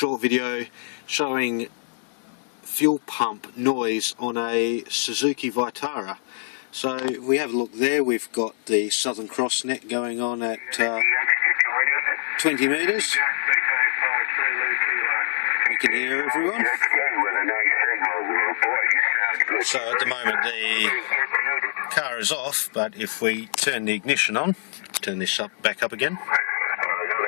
video showing fuel pump noise on a Suzuki Vitara. So if we have a look there, we've got the Southern Cross net going on at 20 metres. We can hear everyone. So at the moment the car is off, but if we turn the ignition on, turn this back up again.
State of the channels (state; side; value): silent; right; digital silence